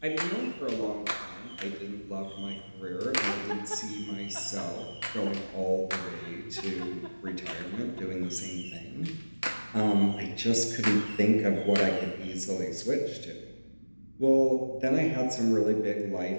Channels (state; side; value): inverted; both; correlation -1.00